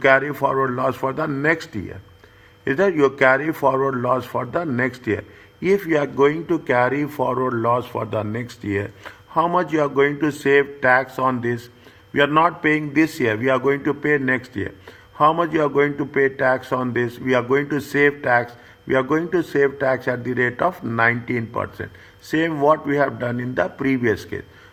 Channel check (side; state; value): both; identical; correlation 1.00